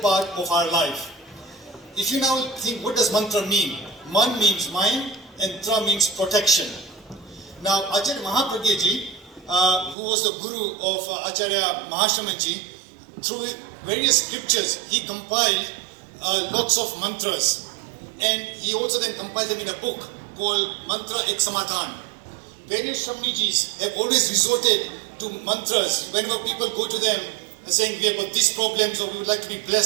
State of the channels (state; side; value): drops out; left; at 10.0 s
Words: part of our life. If you now think, what does mantra mean? Man means mind and tra means protection. Now, Acharya Mahapragya ji, who was the guru of Acharya Mahashrama ji, through various scriptures, he compiled lots of mantras. And he also then compiled them in a book called Mantra Ek Samadhan. Various Shramnijis have always resorted to mantras whenever people go to them saying we have got these problems or we would like to be